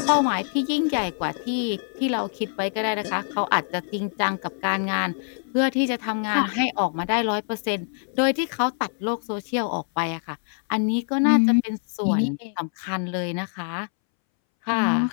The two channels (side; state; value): right; silent; 62 dB below the other